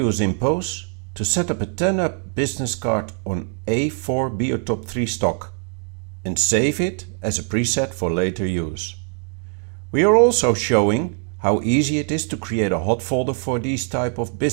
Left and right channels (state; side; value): quieter; left; 39.3 dB